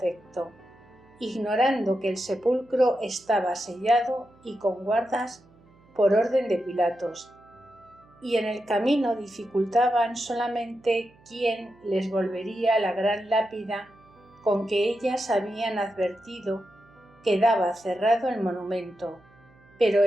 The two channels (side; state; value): right; noise; hum, 29 dB below the sound